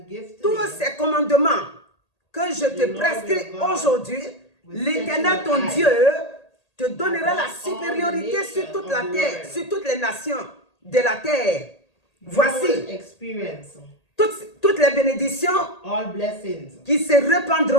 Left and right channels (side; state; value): right; late; 1.8 ms